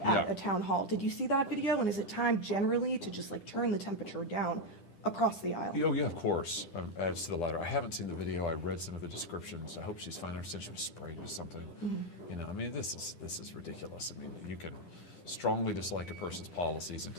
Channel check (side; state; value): right; late; 10 ms